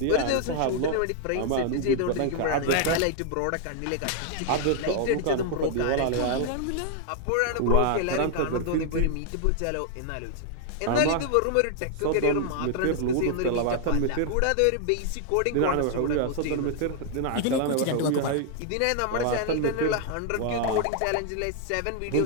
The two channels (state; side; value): different; both; correlation 0.00